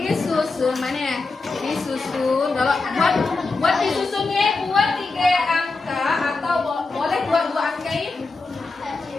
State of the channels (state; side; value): quieter; right; 3.8 dB